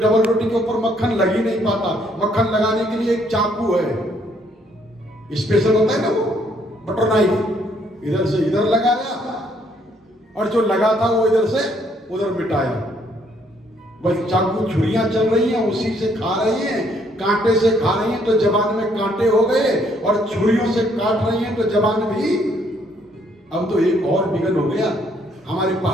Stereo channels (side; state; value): both; normal; correlation 0.68